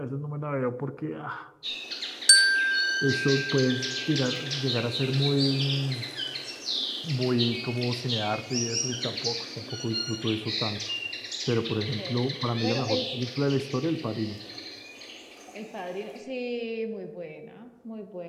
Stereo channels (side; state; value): both; identical; correlation 1.00